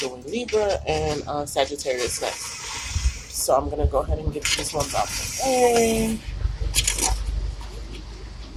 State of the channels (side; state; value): both; identical; correlation 1.00